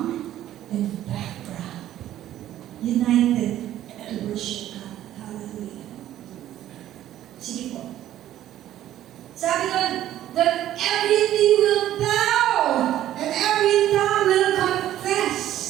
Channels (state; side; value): quieter; left; 12.6 dB